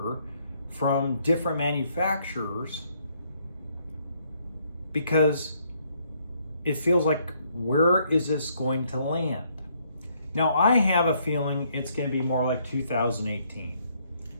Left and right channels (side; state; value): both; inverted; correlation -0.69